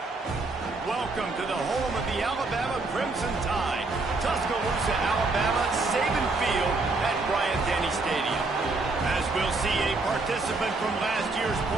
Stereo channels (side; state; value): left; quieter; 3.5 dB